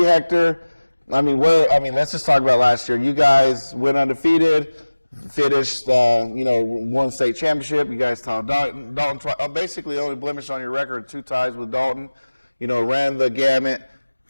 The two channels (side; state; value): both; inverted; correlation -1.00